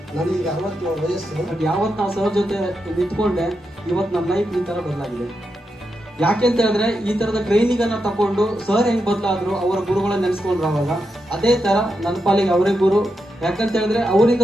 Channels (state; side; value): normal; both; correlation 0.86